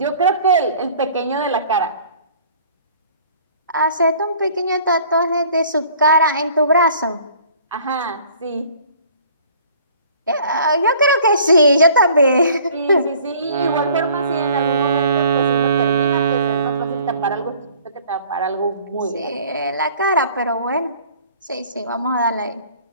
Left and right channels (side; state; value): both; inverted; correlation -0.53